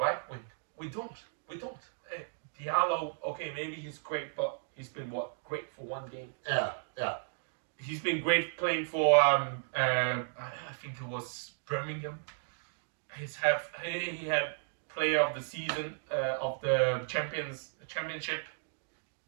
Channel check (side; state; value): left; silent; digital silence